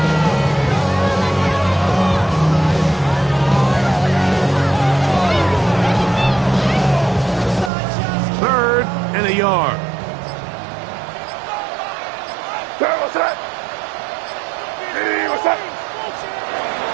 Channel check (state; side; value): drops out; left; at 7.7 s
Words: Third and a yard.